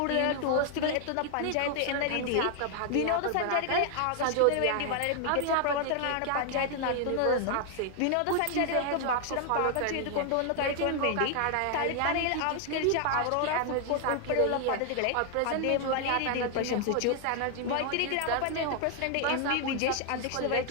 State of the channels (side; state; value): both; different; correlation 0.00